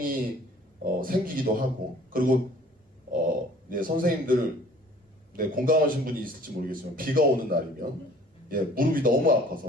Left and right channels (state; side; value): normal; both; correlation 0.52